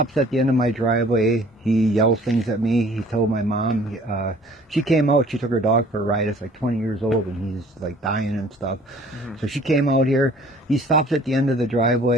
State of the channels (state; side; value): normal; both; correlation 0.53